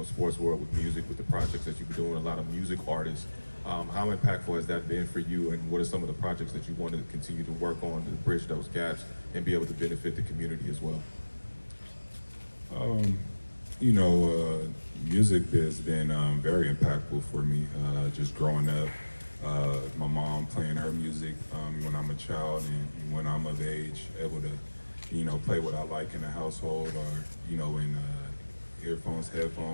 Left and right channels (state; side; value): inverted; both; correlation -1.00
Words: sports world with music, with the projects that you've been doing. A lot of music artists. How impactful has that been for you, and what are some of the projects that you want to continue to work on to bridge those gaps and be able to benefit the community as well? Um, Music has been very impactful for me. Just growing up, my mom playing her music when I'm a child, and when I'm of age, able to, play what I like in the household, or in earphones,